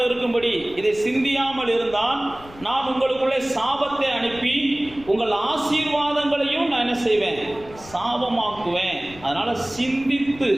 இருக்கும்படி இதை சிந்தியாமல் இருந்தால் நான் உங்களுக்குள்ளே சாபத்தை அனுப்பி உங்கள் ஆசீர்வாதங்களையும் நான் என்ன செய்வேன்? சாபமாக்குவேன். அதனால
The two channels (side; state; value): left; noise; rumble, 20 dB below the sound